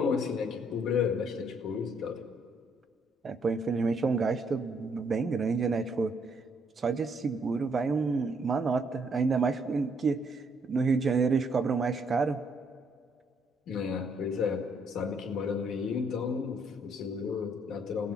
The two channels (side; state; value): both; normal; correlation 0.70